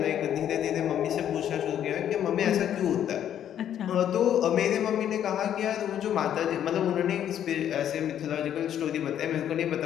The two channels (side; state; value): right; quieter; 10.1 dB